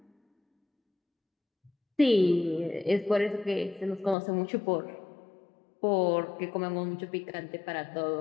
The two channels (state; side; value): drops out; right; at 4.2 s